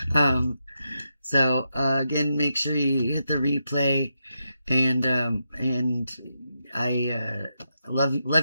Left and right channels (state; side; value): inverted; both; correlation -0.85